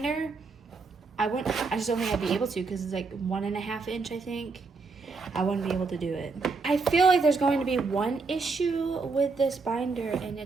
I just don't think I'd be able to because it's like 1.5 inch, I think. I wouldn't be able to do it. I feel like there's going to be one issue with this binder, and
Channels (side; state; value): left; quieter; 4.3 dB